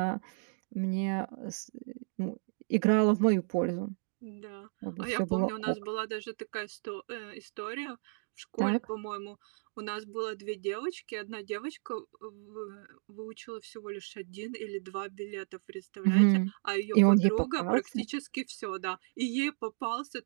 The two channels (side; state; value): left; silent; digital silence